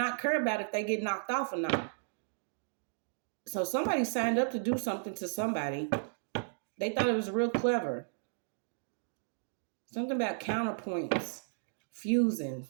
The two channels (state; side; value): silent; left; digital silence